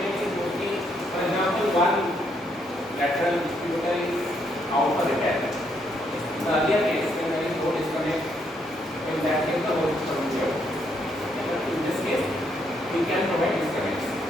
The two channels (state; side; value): normal; both; correlation 0.74